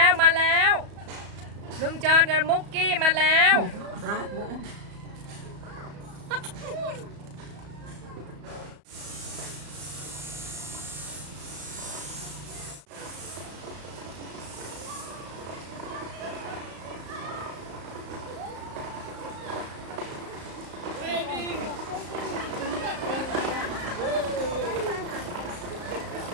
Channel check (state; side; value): late; left; 34 ms